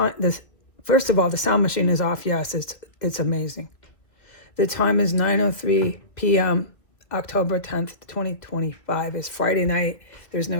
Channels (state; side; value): late; right; 2.0 ms